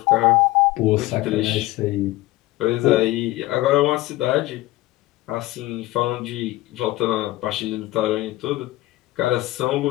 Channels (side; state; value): right; quieter; 17.8 dB